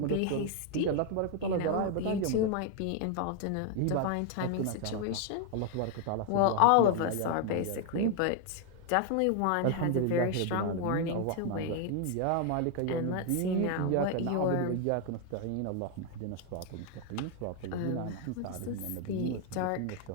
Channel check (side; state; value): both; different; correlation 0.00